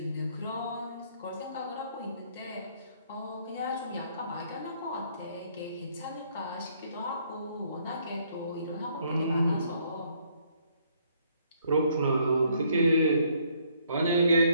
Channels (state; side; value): inverted; both; correlation -0.67